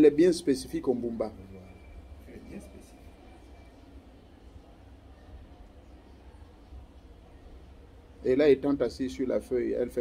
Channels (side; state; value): both; identical; correlation 1.00